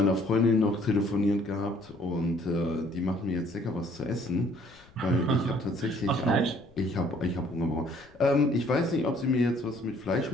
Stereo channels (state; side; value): noise; left; rumble, 27 dB below the sound